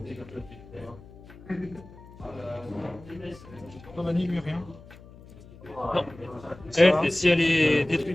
Pas vanille, lui, rien. Non. Elle, si elle est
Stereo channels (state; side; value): noise; left; hum, 20 dB below the sound